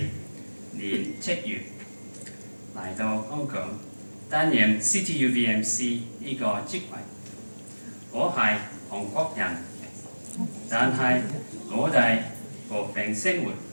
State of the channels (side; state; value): both; inverted; correlation -1.00